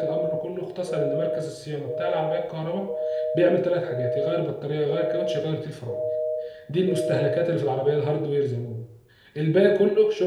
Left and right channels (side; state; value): both; identical; correlation 1.00